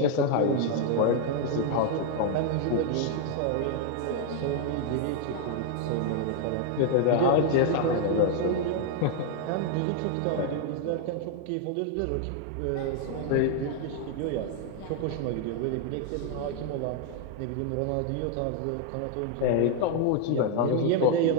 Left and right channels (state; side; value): different; both; correlation 0.00